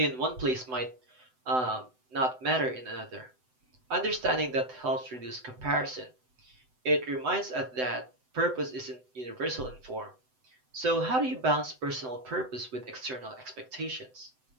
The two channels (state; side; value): late; left; 7.9 ms